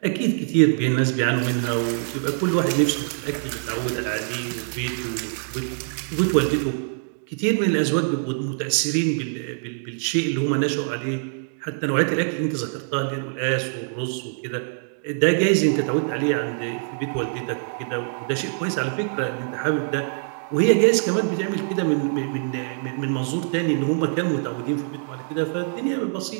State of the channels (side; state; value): left; silent; digital silence